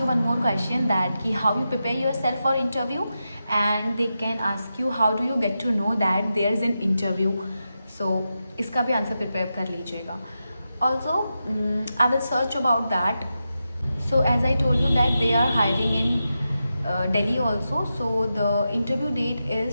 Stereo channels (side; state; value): both; inverted; correlation -0.89